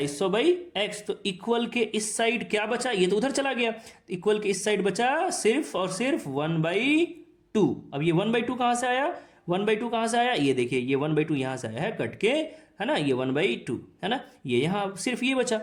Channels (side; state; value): both; identical; correlation 1.00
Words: बाई एक्स। तो इक्वल के इस साइड क्या बचा? ये तो उधर चला गया। इक्वल के इस साइड बचा सिर्फ और सिर्फ 1/2। अब ये 1/2 कहाँ से आया? 1/2 कहाँ से आया? ये देखिए, ये 1/2 यहाँ से आया है कट के, है ना, ये 1/2 है ना, ये यहाँ सिर्फ ये बचा।